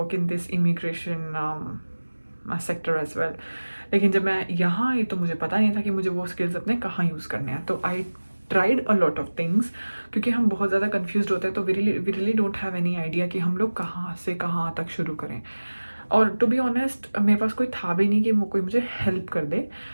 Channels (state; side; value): inverted; both; correlation -1.00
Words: in this immigration sector as well. लेकिन जब मैं यहाँ आई तो मुझे पता नहीं था कि मुझे वो स्किल्स अपने कहाँ यूज़ करने हैं। तो I tried a lot of things, क्योंकि हम बहुत ज़्यादा कन्फ्यूज होते हैं। तो we really don't have any idea कि हम लोग कहाँ से कहाँ तक शुरू करें। और टू बी ऑनेस्ट मेरे पास कोई था भी नहीं कि कोई मुझे हेल्प कर दे।